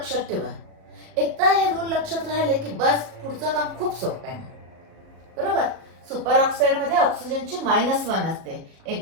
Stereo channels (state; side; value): late; left; 37 ms